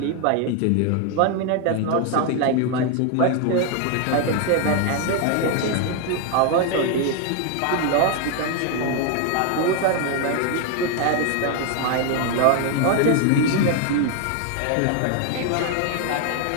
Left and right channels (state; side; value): different; both; correlation 0.01